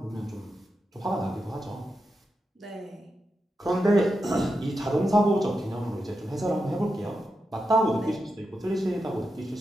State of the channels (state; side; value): normal; both; correlation 0.88